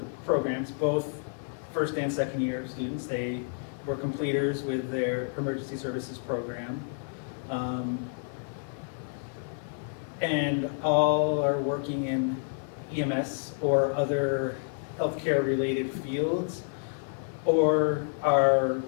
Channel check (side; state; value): right; silent; 58 dB below the other